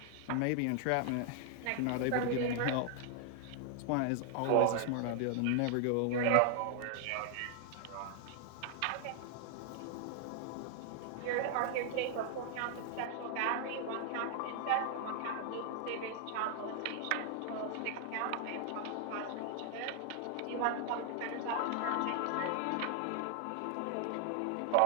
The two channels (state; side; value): different; both; correlation 0.00